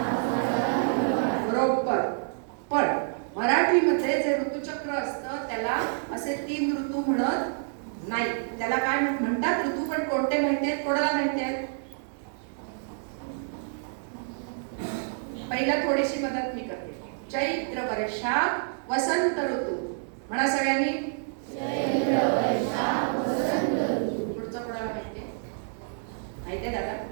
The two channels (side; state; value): left; silent; digital silence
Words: बरोबर. पण मराठीमध्ये जे ऋतुचक्र असतं त्याला असे 3 ऋतू म्हणत नाही. त्याला काय म्हणतात? ऋतू. पण कोणते माहिती आहेत? कोणाला माहिती आहेत? पहिला थोडीशी मदत मी करते. चैत्र वैशाख वसंत ऋतू. म्हणा सगळ्यांनी. चैत्र वैशाख वसंत ऋतू. पुढचं कोणाला माहिती आहे? माहिती आहे दादा?